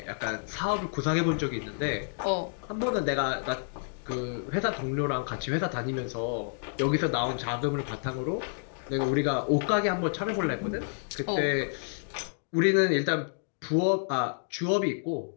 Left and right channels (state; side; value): silent; right; digital silence